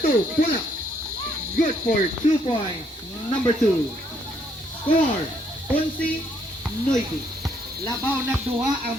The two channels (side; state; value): both; normal; correlation 0.70